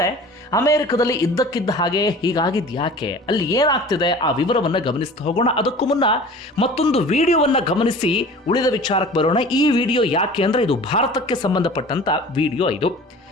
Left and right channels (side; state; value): both; normal; correlation 0.42